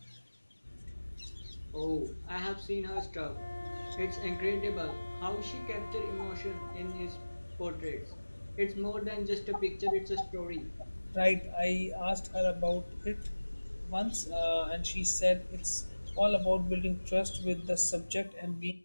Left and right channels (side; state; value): both; inverted; correlation -1.00